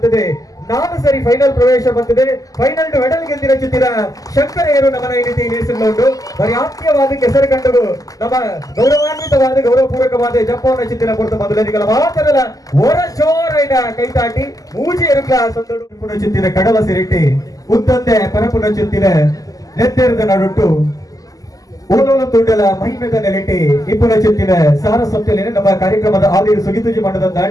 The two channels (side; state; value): right; late; 0.17 ms